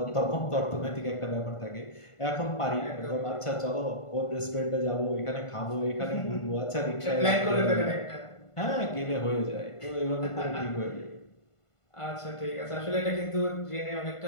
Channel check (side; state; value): right; late; 1.5 ms